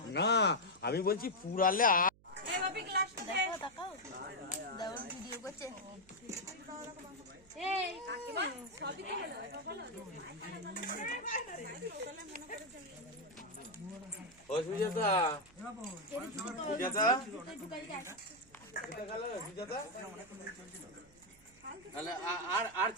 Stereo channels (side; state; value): right; noise; hum, 27 dB below the sound